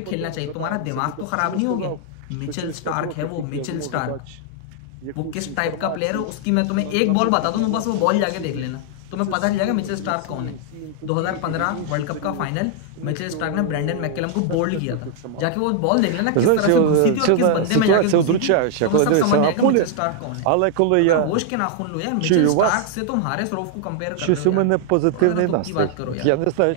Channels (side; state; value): both; different; correlation 0.00